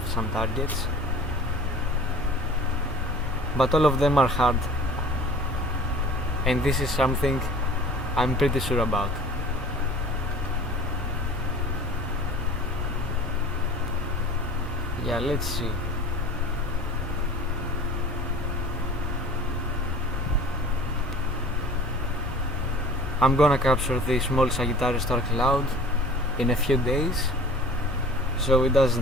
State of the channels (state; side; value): normal; both; correlation 0.43